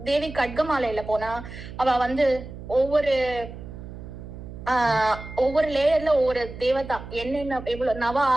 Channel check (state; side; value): noise; right; hum, 12 dB below the sound